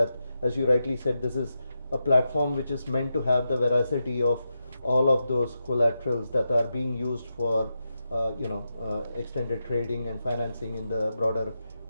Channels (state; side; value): inverted; both; correlation -0.88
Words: as you rightly said, this is a platform which is meant to have the veracity of all of those collaterals that are being used for extended trading and financing in the broader